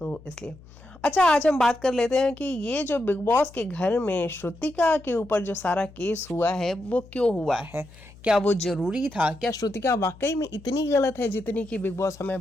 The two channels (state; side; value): noise; left; hum, 22 dB below the sound